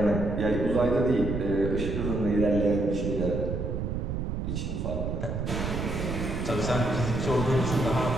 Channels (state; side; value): noise; right; rumble, 3 dB below the sound